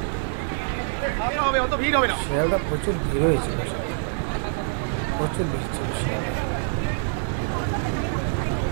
শিয়ালদা প্রচুর ভিড় হয়েছিল, প্রচুর ভিড় ছিল শিয়ালদা।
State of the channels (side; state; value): left; silent; digital silence